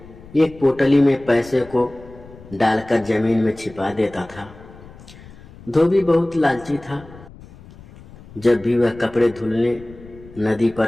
एक पोटली में पैसे को डालकर जमीन में छिपा देता था। धोबी बहुत लालची था। जब भी वह कपड़े धुलने नदी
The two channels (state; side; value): noise; left; rumble, 20 dB below the sound